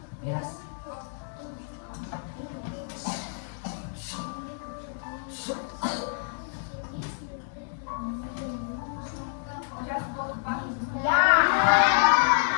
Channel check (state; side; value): silent; right; digital silence